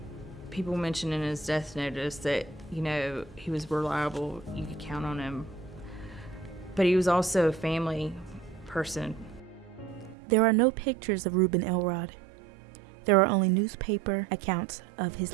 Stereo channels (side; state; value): left; drops out; at 10.2 s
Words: people mentioned in his death notice that, he was reliable, you could count on him. But he was also a family person. There are no pictures of Reuben Elrod. There are only newspaper accounts of his